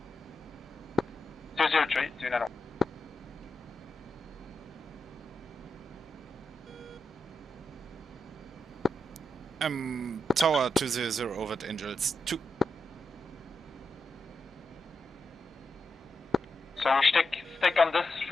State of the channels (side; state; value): both; normal; correlation 0.87